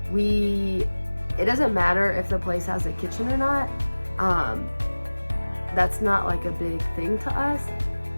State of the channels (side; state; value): both; inverted; correlation -1.00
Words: it doesn't matter if the place has a kitchen or not. That's not like a big thing to us,